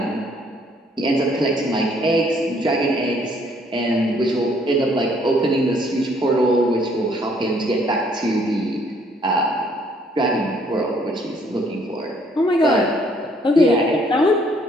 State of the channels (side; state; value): both; normal; correlation 0.65